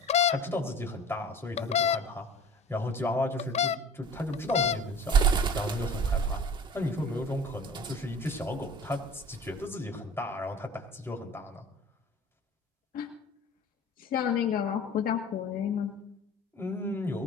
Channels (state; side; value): normal; both; correlation 0.42